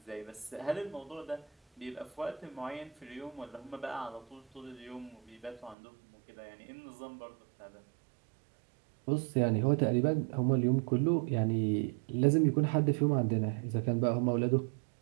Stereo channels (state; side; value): drops out; left; at 5.8 s